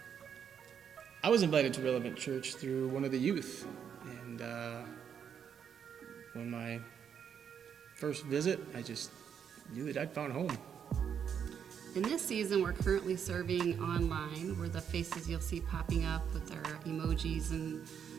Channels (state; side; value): quieter; left; 7.9 dB